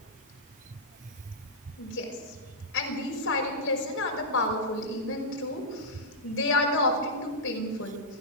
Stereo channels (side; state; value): both; normal; correlation -0.11